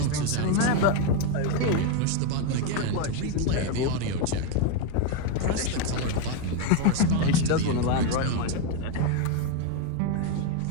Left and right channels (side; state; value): both; different; correlation 0.02